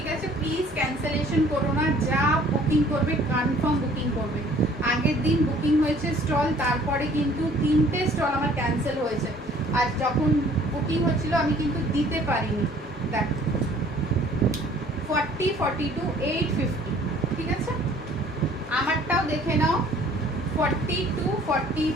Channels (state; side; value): normal; both; correlation 0.55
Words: আছে। প্লিজ ক্যান্সেলেশন করো না, যা বুকিং করবে কনফার্ম বুকিং করবে। আগের দিন বুকিং হয়েছে স্টল, তারপরে কিন্তু 3টে স্টল আমার ক্যান্সেল হয়েছে, আর যখন বুকিং হচ্ছিল আমি কিন্তু দিতে পারিনি। দেখো 40 42 850, ঠিক আছে। আমারটাও দেখে নাও 42